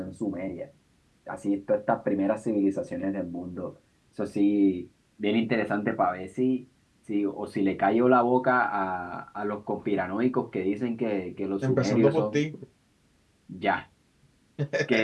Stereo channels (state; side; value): identical; both; correlation 1.00